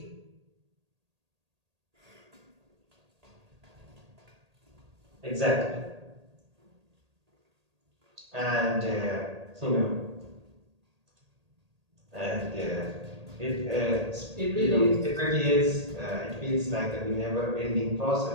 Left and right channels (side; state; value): left; late; 1.8 ms